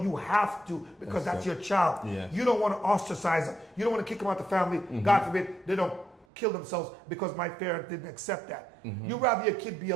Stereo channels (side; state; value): left; drops out; at 6.2 s